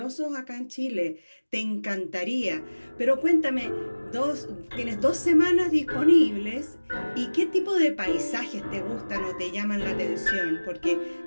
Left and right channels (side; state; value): both; inverted; correlation -1.00